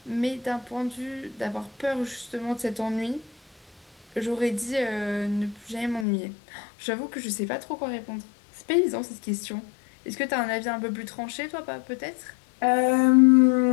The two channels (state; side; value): drops out; right; at 6.1 s